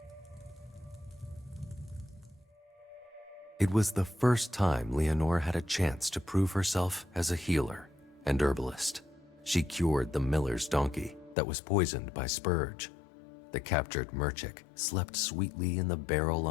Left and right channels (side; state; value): right; drops out; at 11.4 s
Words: It was the first time Leonore had a chance to prove herself as a healer and herbalist. She cured the miller's donkey that was poisoned by Spurge. The captured Merchik slept sweetly in the barrel